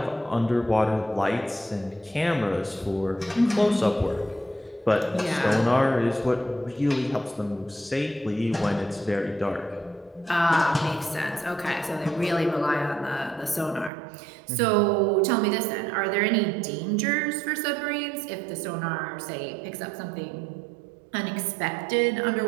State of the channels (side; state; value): left; drops out; at 13.9 s